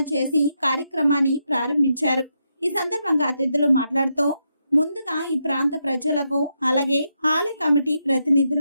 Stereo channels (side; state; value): both; inverted; correlation -0.82